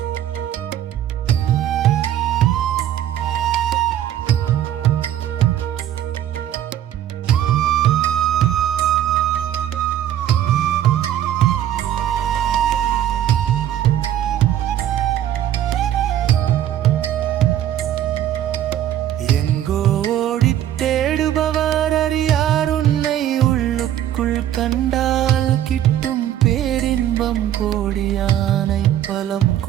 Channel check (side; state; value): left; quieter; 11.5 dB